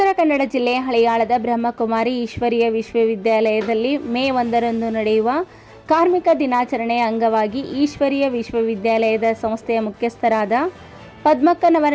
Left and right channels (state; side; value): identical; both; correlation 1.00